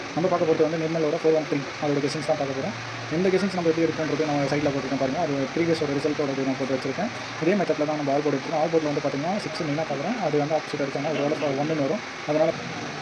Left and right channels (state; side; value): identical; both; correlation 1.00